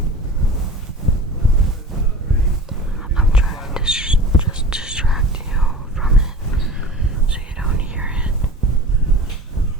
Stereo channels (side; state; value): both; normal; correlation 0.37